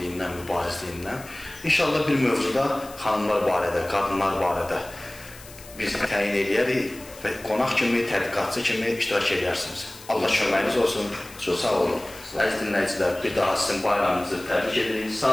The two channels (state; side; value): noise; left; hiss, 19 dB below the sound